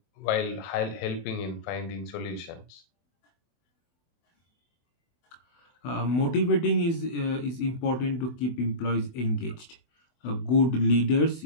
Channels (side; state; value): right; late; 24 ms